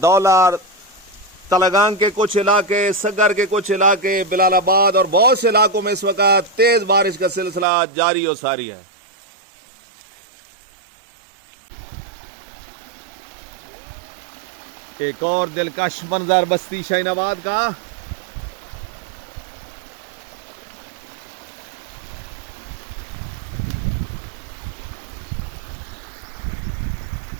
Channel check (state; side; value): drops out; left; at 7.7 s